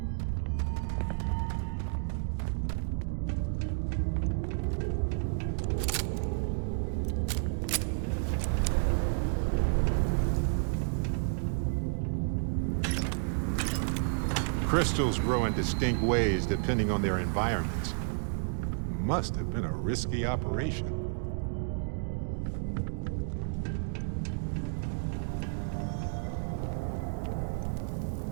Crystals grow in distinct ways depending on their environments. Must have been a risky operation.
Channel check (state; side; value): silent; left; digital silence